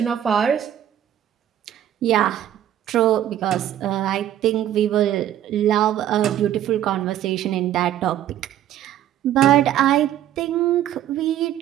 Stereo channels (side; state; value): left; quieter; 11.5 dB